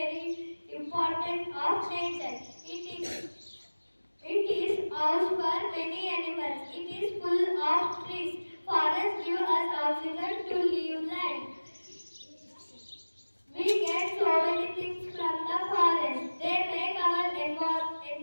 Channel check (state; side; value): inverted; both; correlation -1.00